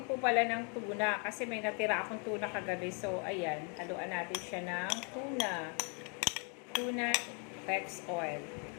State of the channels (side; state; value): right; quieter; 36.8 dB